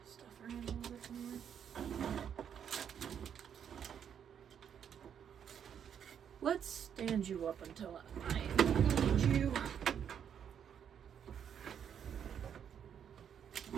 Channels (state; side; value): quieter; left; 8.4 dB